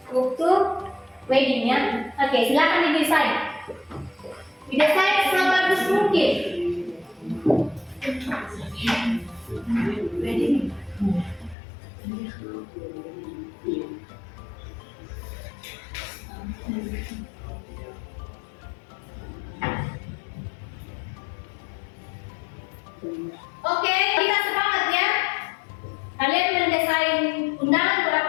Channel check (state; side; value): drops out; right; at 11.6 s